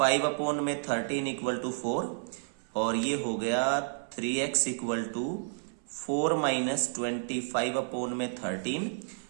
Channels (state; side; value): silent; left; 57 dB below the other